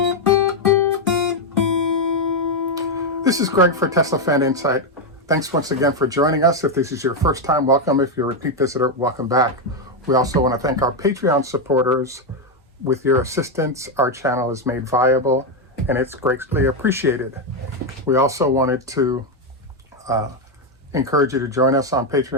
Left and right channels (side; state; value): both; normal; correlation 0.04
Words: This is Greg for Tesla Fan Insight. Thanks once again for joining us. If this is your first time, welcome. If you're a repeat visitor, welcome back. We also want to thank our Patreon supporters. With your assistance, our channel is made viable, and it's greatly appreciated. We also wanted to encourage you to join us on